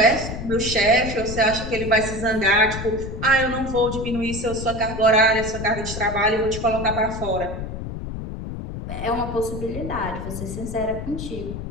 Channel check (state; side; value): noise; left; rumble, 7 dB below the sound